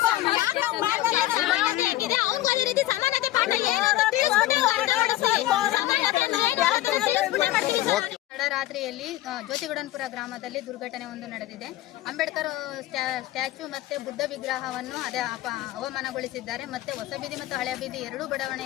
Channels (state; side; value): quieter; right; 15.6 dB